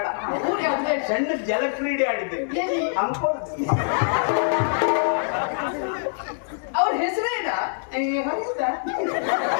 ಊರು ಯಾವ್ದು ಬೇಡ. ಸಣ್ಣ ಜಲಕ್ರೀಡೆ ಆಡಿದ್ದೇನೆ ಎಲ್ಲಿ? ಅಂಕೋಲದಲ್ಲಿ ಅವ್ರ ಹೆಸರೇನಾ?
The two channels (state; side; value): silent; right; digital silence